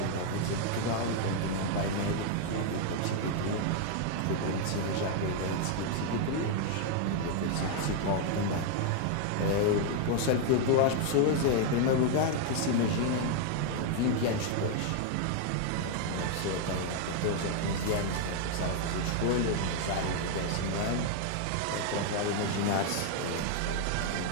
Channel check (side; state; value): both; different; correlation 0.00